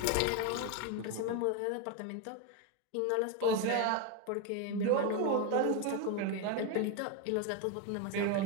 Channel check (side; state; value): both; different; correlation 0.02